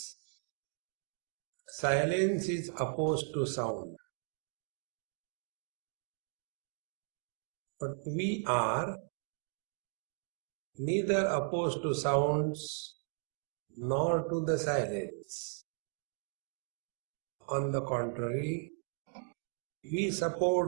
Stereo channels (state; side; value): silent; left; 53 dB below the other